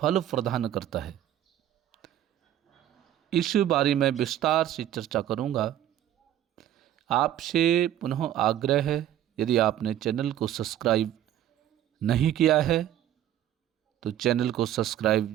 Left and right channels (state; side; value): quieter; left; 11.7 dB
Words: प्रदान करता है, इस बारे में विस्तार से चर्चा करूंगा। आपसे पुनः आग्रह है, यदि आपने चैनल को सब्सक्राइब नहीं किया है तो चैनल को सब्सक्राइब